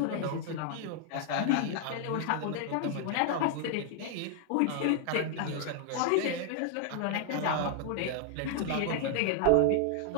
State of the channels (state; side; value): different; both; correlation 0.00